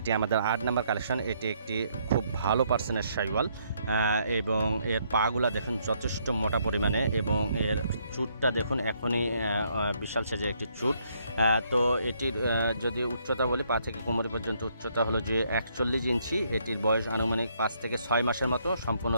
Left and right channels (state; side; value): inverted; both; correlation -0.71